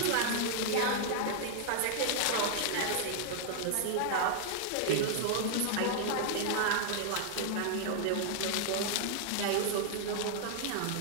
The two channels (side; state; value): both; different; correlation 0.00